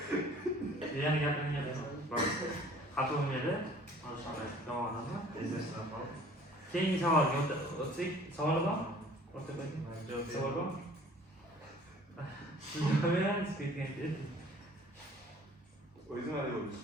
Yana gapiringga xafa bo'lmaydi. Keyingi savolga o'tsak, savol bor? Savol bor? O'zim hali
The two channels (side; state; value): both; normal; correlation 0.51